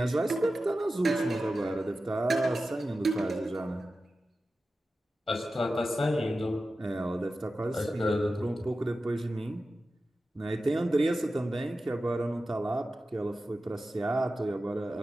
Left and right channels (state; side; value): normal; both; correlation 0.93